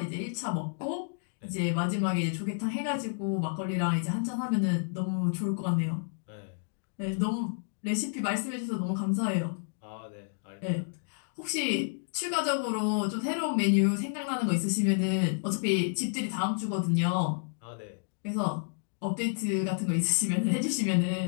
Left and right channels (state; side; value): silent; right; digital silence